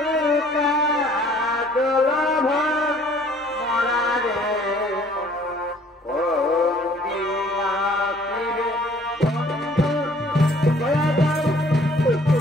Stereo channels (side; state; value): both; normal; correlation 0.57